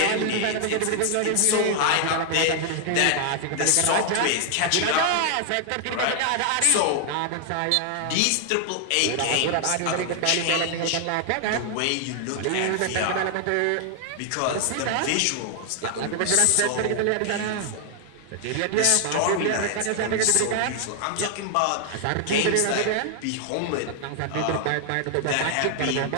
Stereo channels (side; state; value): both; different; correlation 0.00